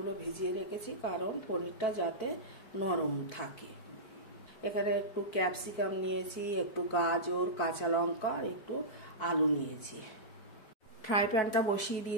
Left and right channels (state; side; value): late; right; 4.6 ms